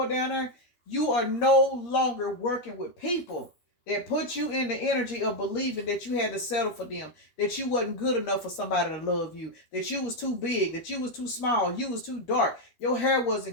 down there, you are no longer working with people that put you in the energy of believing that you had to settle for them, that you wasn't good enough for somebody to love you, that you was too big, that you was too small, you was too dark, your hair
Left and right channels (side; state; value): right; late; 12 ms